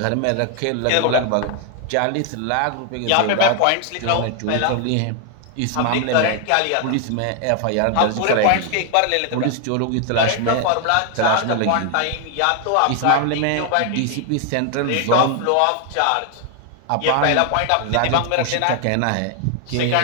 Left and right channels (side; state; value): both; different; correlation 0.00